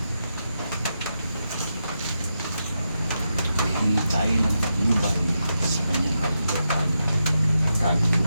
Hihingi tayo ng patnubay sa kanyang kalupan,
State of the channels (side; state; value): both; inverted; correlation -0.87